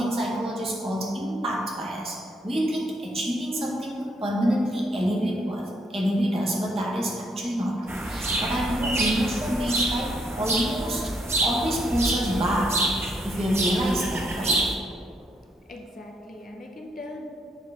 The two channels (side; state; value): both; normal; correlation 0.74